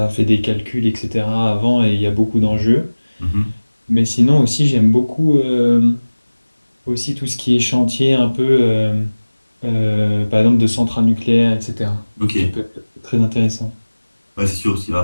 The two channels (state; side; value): inverted; both; correlation -1.00